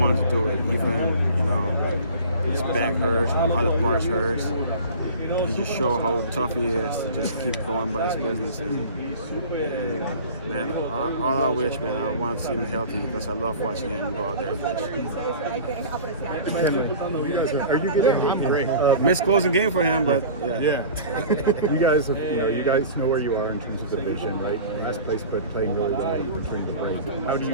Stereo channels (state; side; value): inverted; both; correlation -0.40